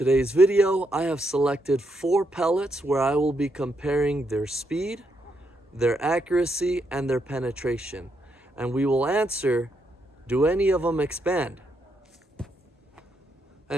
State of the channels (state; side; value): normal; both; correlation 0.79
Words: video, I have selected 4 pellets where I will be comparing their speed, their accuracy, and their penetration. And we will answer, do any of them expand?